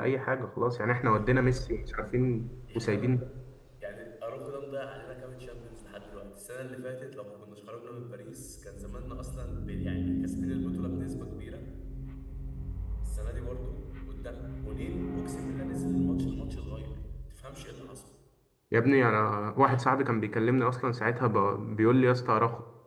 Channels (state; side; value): identical; both; correlation 1.00